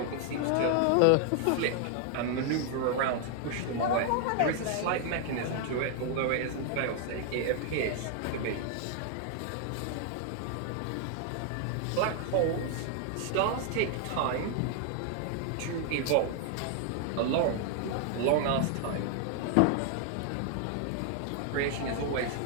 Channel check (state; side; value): different; both; correlation 0.00